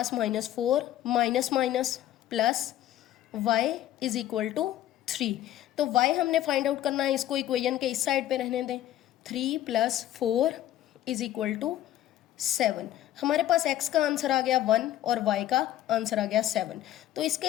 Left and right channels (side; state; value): right; quieter; 12.9 dB